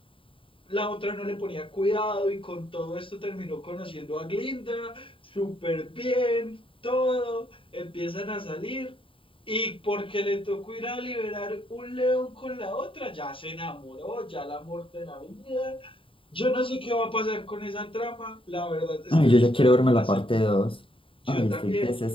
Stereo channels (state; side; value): late; right; 0.25 ms